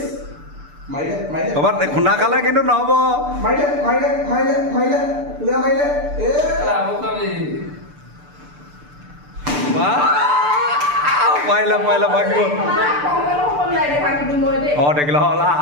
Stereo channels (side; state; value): left; late; 6.8 ms